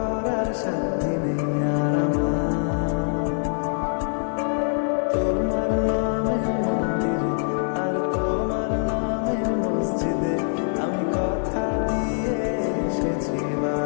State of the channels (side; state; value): right; silent; 63 dB below the other